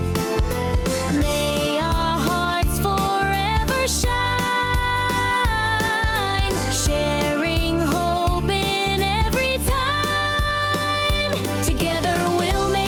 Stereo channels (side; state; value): both; identical; correlation 1.00